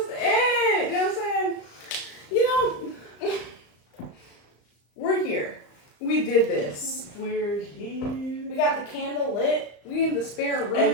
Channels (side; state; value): right; late; 35 ms